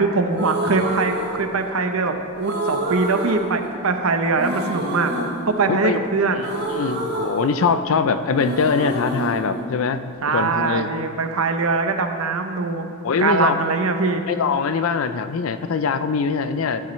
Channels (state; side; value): normal; both; correlation 0.04